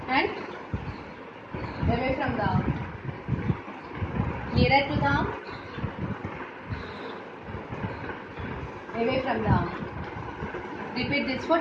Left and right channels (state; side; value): identical; both; correlation 1.00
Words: and away from the arm. Nearer to the arm, away from the arm. Repeat this for